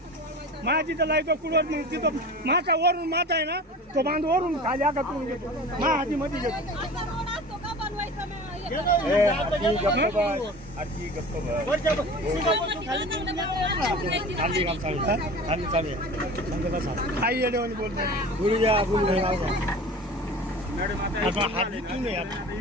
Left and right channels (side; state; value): both; normal; correlation 0.37